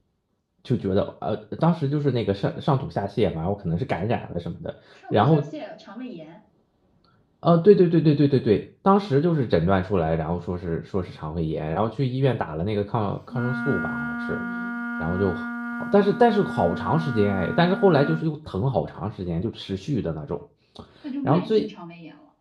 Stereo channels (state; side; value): identical; both; correlation 1.00